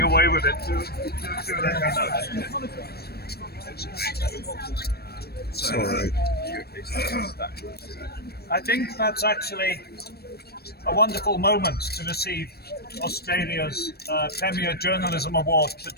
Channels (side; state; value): right; late; 0.46 ms